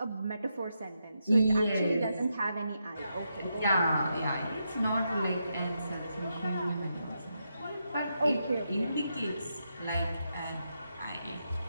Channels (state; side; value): inverted; both; correlation -0.84